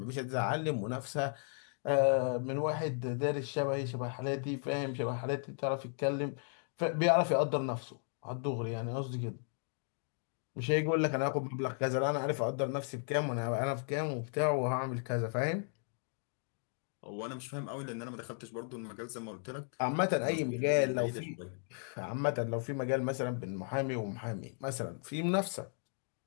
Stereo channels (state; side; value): silent; right; 54 dB below the other